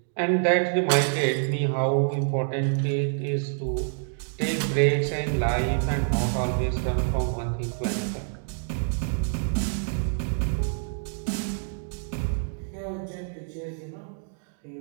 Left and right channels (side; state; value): left; silent; digital silence